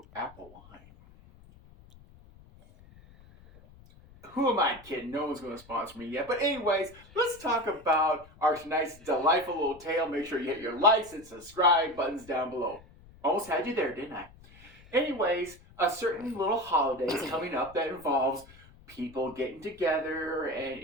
apple wine. Who am I kidding? No one's going to sponsor me yet. But anyways, let's talk about our tonight's delightful little tale. Make sure you hit your likes and subscribe buttons down below. Almost had you there, didn't I? Anyways, a certain little holiday is coming up that involves people getting together and,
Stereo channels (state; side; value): noise; left; rumble, 23 dB below the sound